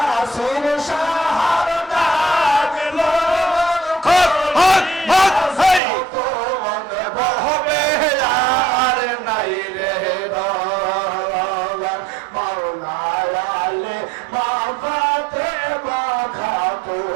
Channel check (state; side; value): drops out; left; at 5.8 s